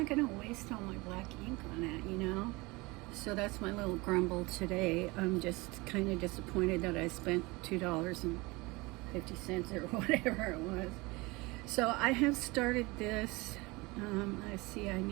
going to waste all my black ink on that, you know. So that's my little grumble today. I'm just kind of disappointed that I spent $2.50 or whatever it was. So I have started this. I see I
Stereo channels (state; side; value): quieter; left; 23.8 dB